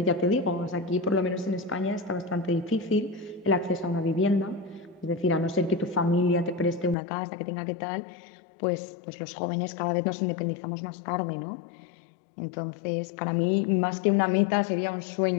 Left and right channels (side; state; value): right; drops out; at 7.0 s